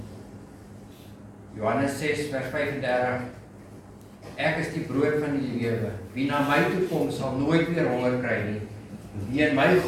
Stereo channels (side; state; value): both; identical; correlation 1.00